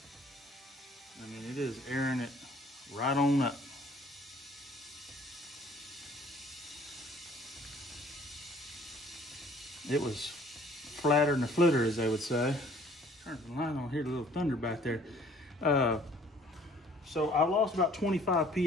I mean, it is airing it right on up. It was flatter than a flitter, as they would say. Turn the light on here, a little thunder back there. So I lost about 25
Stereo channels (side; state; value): both; normal; correlation 0.56